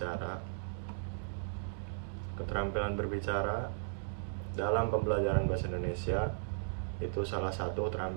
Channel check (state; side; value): silent; left; digital silence